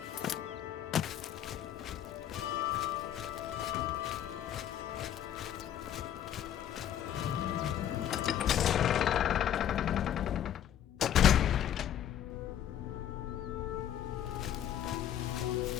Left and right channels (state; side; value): quieter; right; 10.7 dB